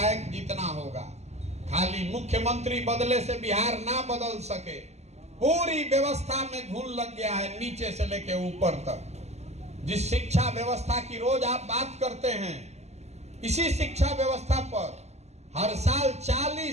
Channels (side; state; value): left; late; 0.32 ms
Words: जीतना होगा। खाली मुख्यमंत्री बदले से बिहार ना बदल सके। पूरी व्यवस्था में घुन लग गया है, नीचे से लेके ऊपर तक। जिस शिक्षा व्यवस्था की रोज आप बात करते हैं, इसी शिक्षा व्यवस्था पर हर साल